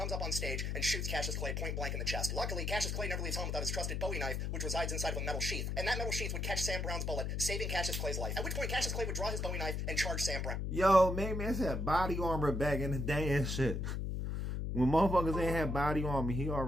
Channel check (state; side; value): noise; left; hum, 1 dB below the sound